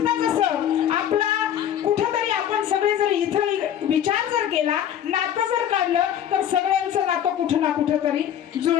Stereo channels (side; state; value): right; quieter; 10.2 dB